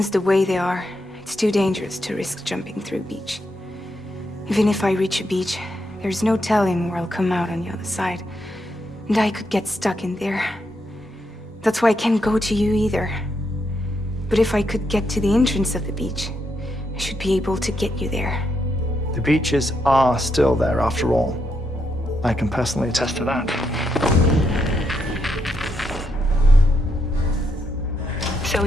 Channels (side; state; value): both; normal; correlation 0.80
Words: the way they are, it's too dangerous to risk jumping through a beach. Even if I reach a beach, there's no telling where I'll come out on the other side. And I could get stuck in there. That's why I can't go to you either. But if I could get to the entrance of the beach, I should be able to get you there. The beaches are still there after all. I can personally attest to that. So